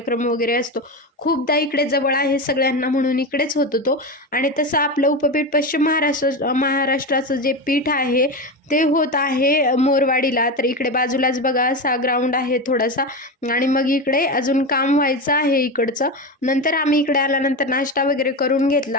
वगैरे असतो, खूपदा इकडे जवळ आहे सगळ्यांना म्हणून इकडेच होतो तो. आणि तसं आपलं उपपीठ पश्चिम महाराष्ट्राचं जे पीठ आहे ते होत आहे मोरवाडीला. तर इकडे बाजूलाच बघा असा ग्राउंड आहे थोडासा आणि मग इकडे अजून काम व्हायचं आहे इकडचं. नंतर आम्ही इकडे आल्यानंतर नाश्ता वगैरे करून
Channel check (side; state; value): both; normal; correlation 0.19